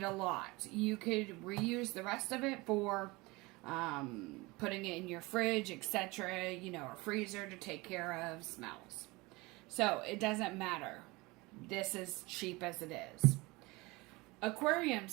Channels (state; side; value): quieter; left; 23.3 dB